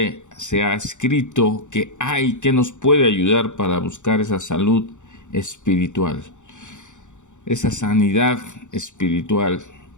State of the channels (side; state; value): right; late; 0.85 ms